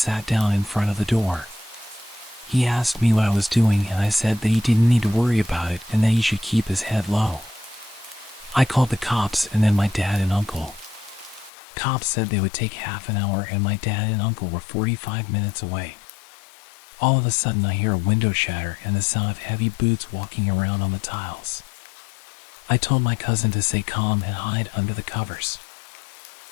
down in front of the door. He asked me what I was doing, and I said that he didn't need to worry about it and that he should keep his head low. I called the cops and then my dad and uncle. Cops said they would take half an hour, and my dad and uncle were 45 minutes away. All of a sudden I hear a window shatter and the sound of heavy boots walking around on the tiles. I told my cousin to stay calm and hide under the covers.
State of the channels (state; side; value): drops out; right; at 11.5 s